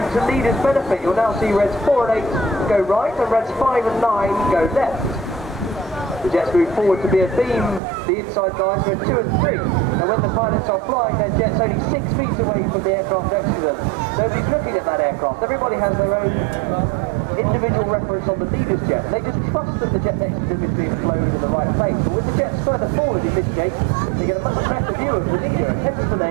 To leaders' benefit, you'll now see reds 4 and 8 go right and reds 5 and 9 go left. The jets move forward to be a beam, the inside guys red 2 and 3. And when the pilots are flying their jets only 6 feet away from the aircraft next to them, nobody's looking at that aircraft. Everybody has their own individual reference on the leader's jet. They just trust that the jet next to them is being flown in the right place. But with the jets further forward in this shape, they get a much better view of the leader, and hence the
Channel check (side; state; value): left; drops out; at 7.8 s